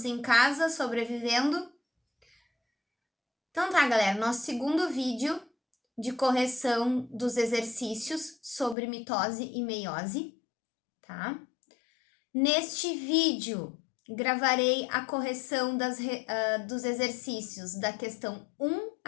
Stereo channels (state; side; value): drops out; right; at 8.8 s